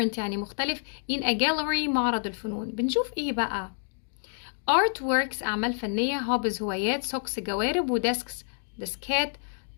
يعني مختلف. in a gallery معرض الفنون. بنشوف ايه بقى؟ artworks أعمال فنية، hobbies هوايات، socks جوارب، و desks ديسكات.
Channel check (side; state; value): right; silent; digital silence